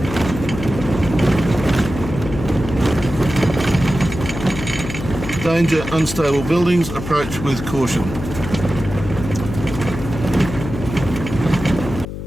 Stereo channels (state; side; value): noise; left; hum, 8 dB below the sound